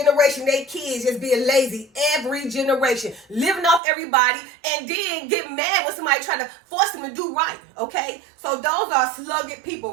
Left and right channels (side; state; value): left; drops out; at 3.8 s